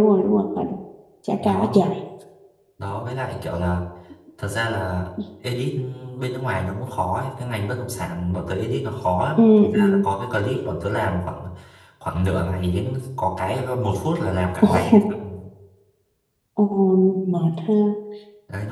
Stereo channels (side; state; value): both; identical; correlation 1.00